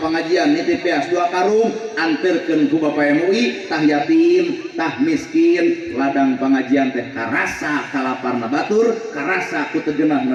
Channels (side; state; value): both; identical; correlation 1.00